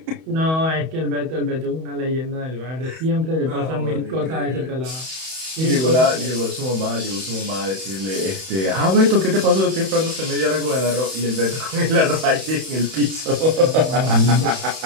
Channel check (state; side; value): late; left; 31 ms